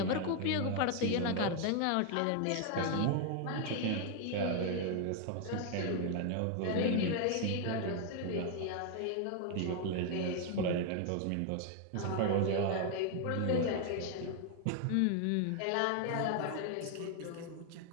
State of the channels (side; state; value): both; different; correlation 0.00